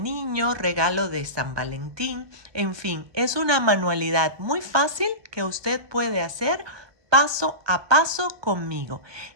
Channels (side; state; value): left; late; 1.2 ms